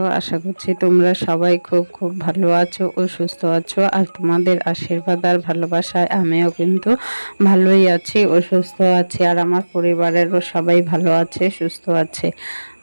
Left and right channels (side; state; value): both; inverted; correlation -1.00